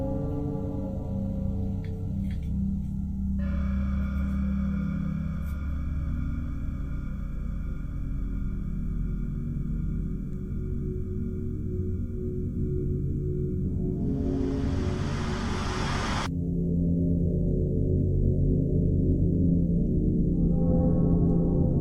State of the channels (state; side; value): identical; both; correlation 1.00